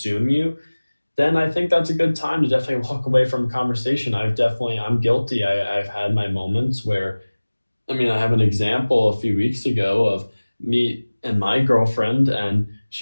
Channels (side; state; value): both; inverted; correlation -1.00